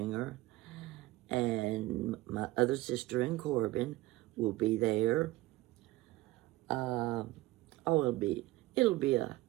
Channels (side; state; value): left; quieter; 18.2 dB